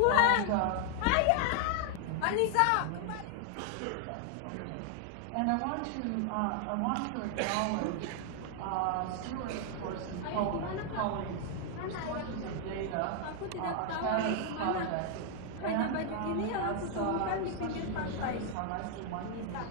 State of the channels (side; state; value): both; different; correlation 0.00